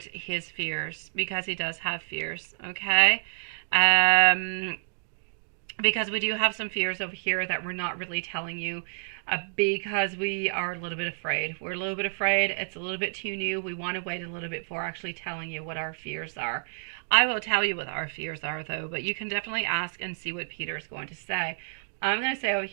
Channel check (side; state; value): left; silent; digital silence